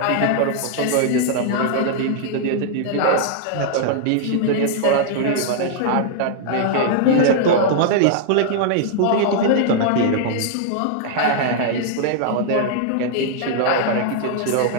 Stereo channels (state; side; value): different; both; correlation -0.01